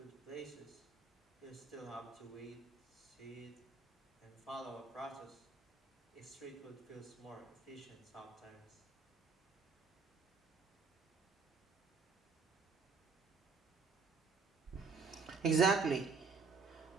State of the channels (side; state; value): left; quieter; 4.7 dB